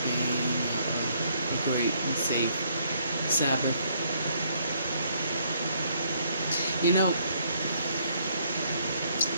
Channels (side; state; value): both; inverted; correlation -0.68